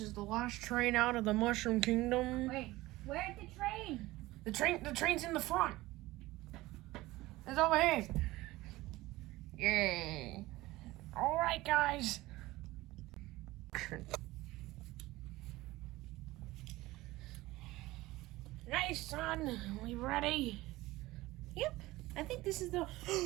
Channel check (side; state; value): left; quieter; 18.6 dB